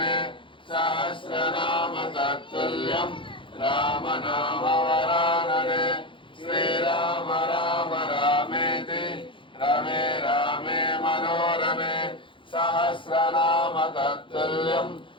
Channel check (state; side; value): late; right; 0.24 ms